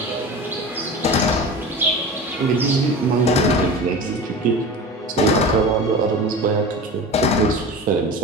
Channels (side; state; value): both; normal; correlation 0.32